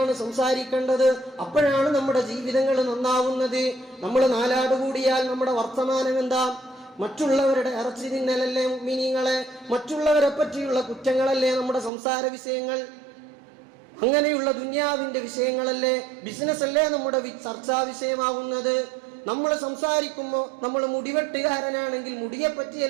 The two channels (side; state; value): left; drops out; at 11.9 s